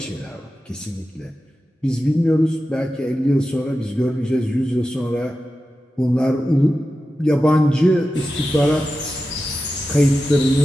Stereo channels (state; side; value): normal; both; correlation 0.92